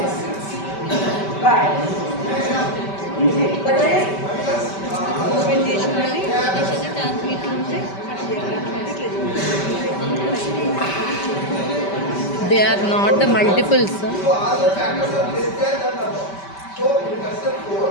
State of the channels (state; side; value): late; right; 5.2 ms